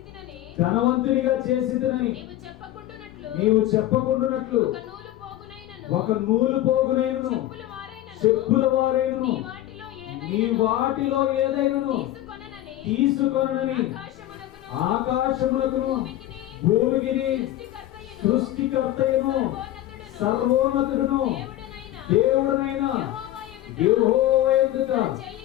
ధనవంతునిగా చేసితినని నీవు చెప్పకుండునట్లు ఒక నూలు పోగునైనను చెప్పుల వారైనను నీ వాటిలో ఏదైనను తీసుకొనని ఆకాశమునకును భూమికిని సృష్టికర్తయును సర్వోన్నతుడును దేవుడనైన యెహోవా ఎదుట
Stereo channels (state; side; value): quieter; right; 14.0 dB